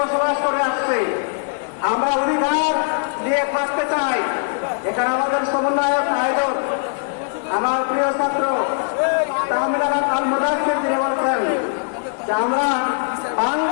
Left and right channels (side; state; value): right; silent; digital silence